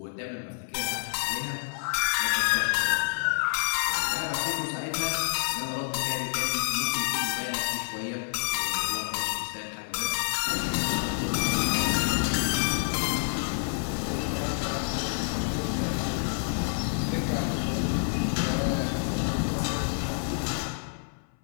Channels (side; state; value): right; silent; 58 dB below the other